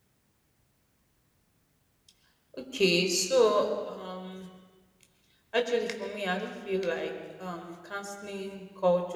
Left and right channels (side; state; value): both; identical; correlation 1.00